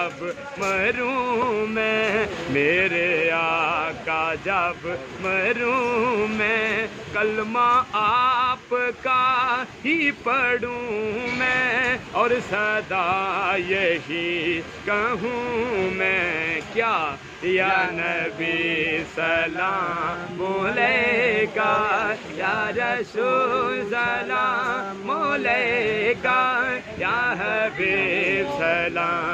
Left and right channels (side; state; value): both; identical; correlation 1.00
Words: مروں میں، میرے آقا جب مروں میں، کلمہ آپ کا ہی پڑھوں میں، اور صدا یہی کہوں میں کیا، یا نبی سلام علیکہ، یا رسول سلام علیکہ، یا حبیب